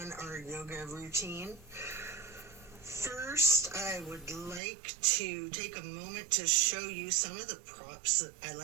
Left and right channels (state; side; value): drops out; left; at 4.6 s